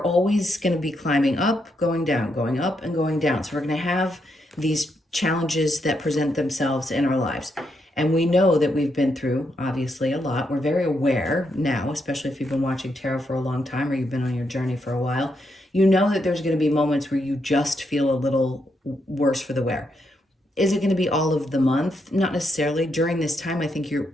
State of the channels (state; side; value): normal; both; correlation 0.80